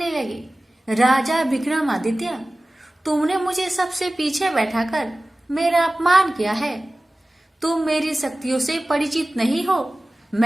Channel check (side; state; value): both; normal; correlation 0.97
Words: लगे, राजा विक्रमादित्य, तुमने मुझे सबसे पीछे बैठाकर मेरा अपमान किया है। तुम मेरी शक्तियों से परिचित नहीं हो,